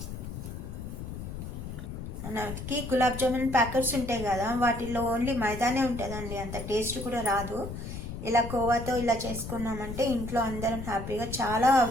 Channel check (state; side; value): noise; left; rumble, 8 dB below the sound